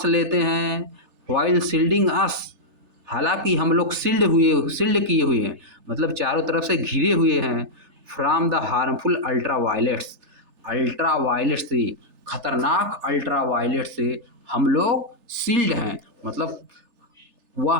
लेते हैं वाइल शील्डिंग अस, हालांकि हम लोग शील्ड किए हुए हैं, मतलब चारों तरफ से घिरे हुए हैं, फ्रॉम द हार्मफुल अल्ट्रावायलेट्स, अल्ट्रावायलेट से, खतरनाक अल्ट्रावायलेट से हम लोग शील्ड हैं, मतलब वह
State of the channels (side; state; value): left; late; 3.3 ms